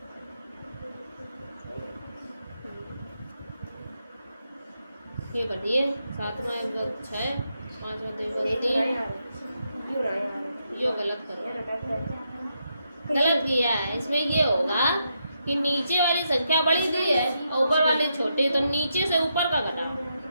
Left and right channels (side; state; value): both; inverted; correlation -0.82